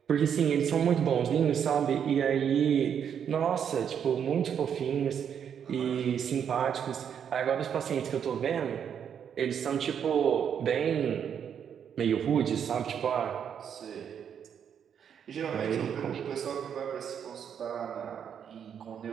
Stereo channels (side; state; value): left; quieter; 8.2 dB